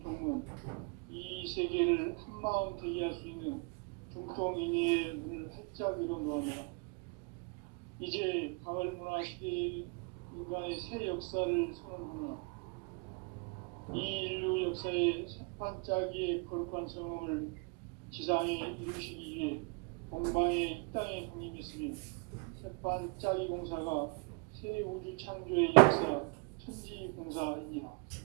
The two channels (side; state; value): left; quieter; 32.1 dB